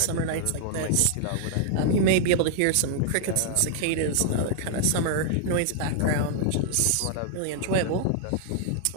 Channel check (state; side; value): different; both; correlation 0.00